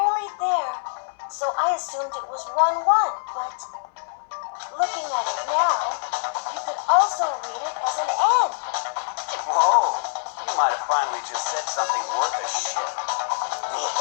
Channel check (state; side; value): silent; right; 58 dB below the other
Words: there, so I assumed it was 1-1, but looking at it now, you could also read it as an N. Whoa, you might have finally just said something worth a shit. Really